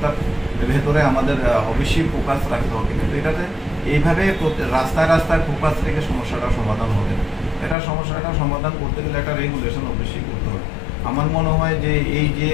ভেতরে আমাদের অবশ্যই ফোকাস রাখতে হবে, কিন্তু এটাতে এইভাবে রাস্তায় ফোকাস রেখে সমস্যাটা সমাধান হবে না। সমস্যাটা সমাধান করতে গেলে একটা রেগুলেশন অবশ্যই করতে হবে। আমার মনে হয় যে এই যে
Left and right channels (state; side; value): drops out; right; at 7.8 s